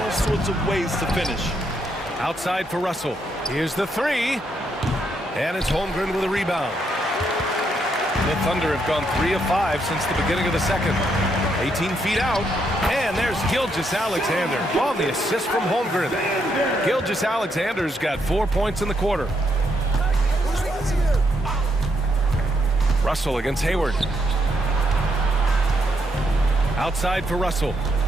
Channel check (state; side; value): normal; both; correlation 0.77